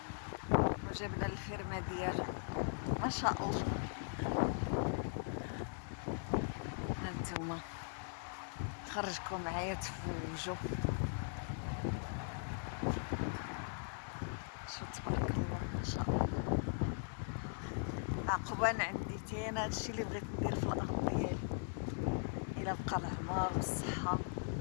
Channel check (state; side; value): silent; right; digital silence